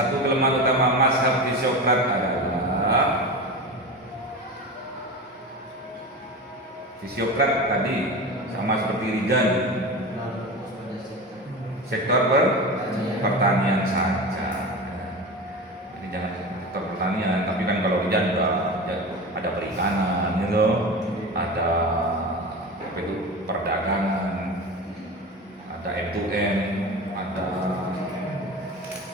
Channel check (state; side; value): normal; both; correlation 0.28